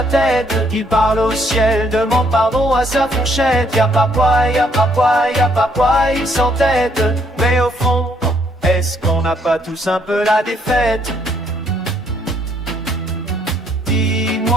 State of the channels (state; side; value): normal; both; correlation 0.69